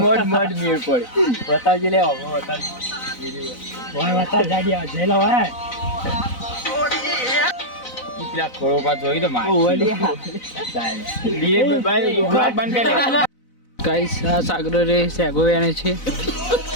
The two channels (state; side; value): late; right; 4.0 ms